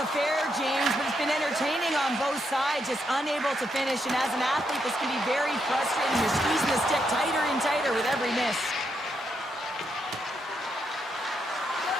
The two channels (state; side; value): normal; both; correlation 0.80